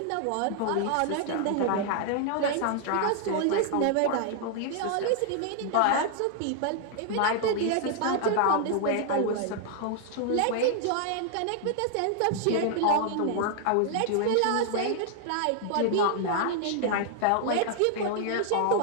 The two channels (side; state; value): both; different; correlation 0.00